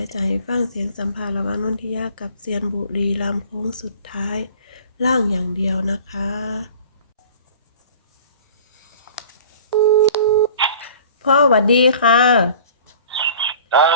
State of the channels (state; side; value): inverted; both; correlation -0.46